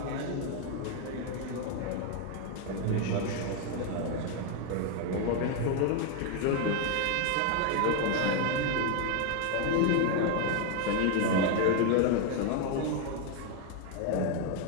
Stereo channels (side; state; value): both; different; correlation 0.01